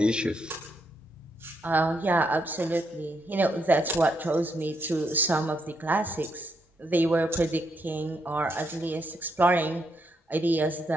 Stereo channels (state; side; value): normal; both; correlation 0.78